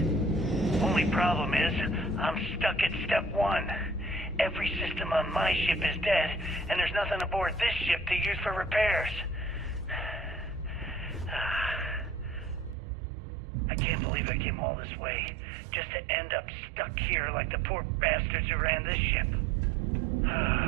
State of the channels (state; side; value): drops out; left; at 12.8 s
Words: Only problem is, I'm stuck at step 1. Every system on my ship is dead, and there's nothing aboard this ship to use for repairs. I can't believe I came all this way, just to end up stuck here like the poor bastards who ran this ship.